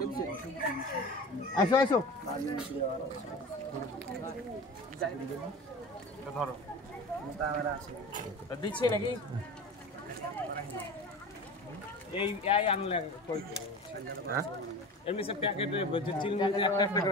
আসো আসো ধরো দিচ্ছি নাকি? এই আনলে এমনি সব প্যাকেটে চিলমুজি একটা একটা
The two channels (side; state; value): both; normal; correlation 0.34